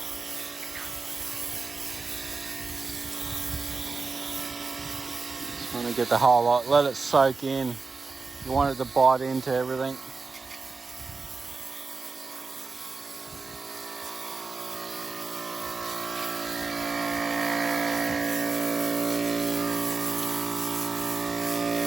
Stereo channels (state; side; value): quieter; left; 4.2 dB